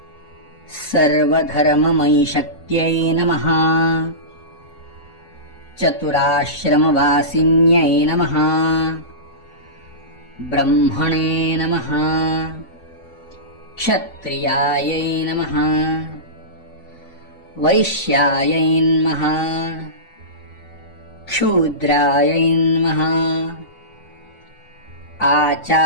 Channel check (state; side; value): late; right; 3.5 ms